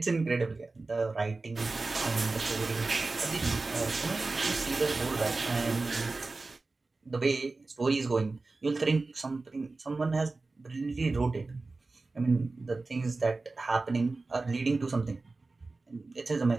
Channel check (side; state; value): left; quieter; 3.5 dB